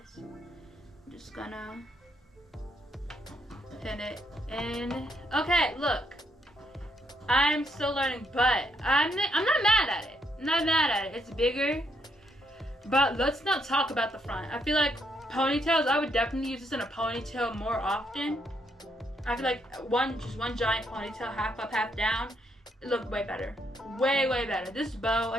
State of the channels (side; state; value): both; normal; correlation 0.75